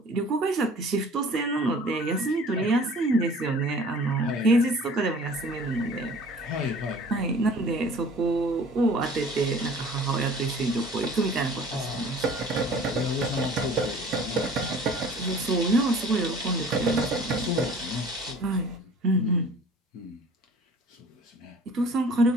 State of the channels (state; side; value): normal; both; correlation 0.48